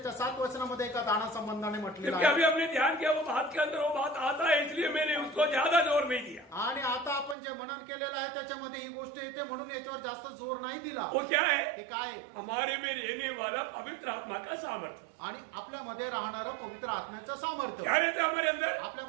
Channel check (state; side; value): drops out; left; at 7.4 s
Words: 7 वचनामध्ये एका दाना संबंधाने म्हटलेलं क्योंकि अभी आहे. हमने ध्यान किया वो बात के अंदर वो बात आता है, इसलिए मैंने उसको ज्यादा जोर नहीं दिया. आणि आता आपण जे मनन केलेलं आहे त्याच्यामध्ये ही गोष्ट येते म्हणून याच्यावर जास्त जोर नाही दिला. वो क्या है? ते काय आहे? हमारे में रहने वाला पवित्र आत्मा का सामर्थ्य. आणि आपल्यामध्ये राहणारं पवित्र आत्म्याचं सामर्थ्य. क्या रहता है हमारे अंदर?